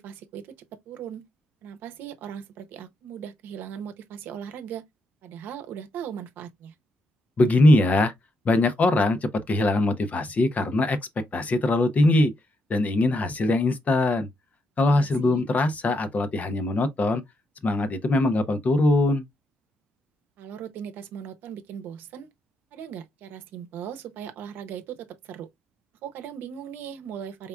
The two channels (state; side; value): normal; both; correlation 0.80